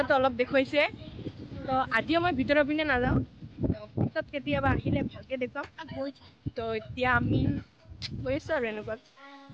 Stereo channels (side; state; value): both; identical; correlation 1.00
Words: অলপ দেখুৱাইছে। তো আজিও মই ভিতৰৰ পিনে নাযাওঁ, পিছত কেতিয়াবা আহিলে ভালকৈ দেখুৱাম। তো এতিয়া আমি গৈ আছোঁ আৰু এনেকুৱা